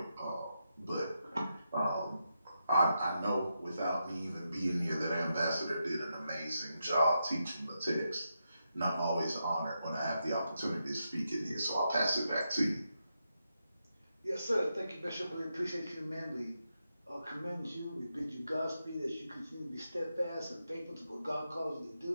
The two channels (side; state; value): both; inverted; correlation -0.85